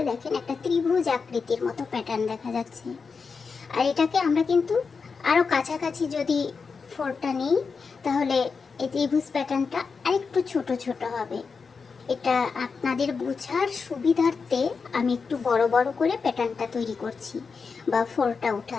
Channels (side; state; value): right; quieter; 5.1 dB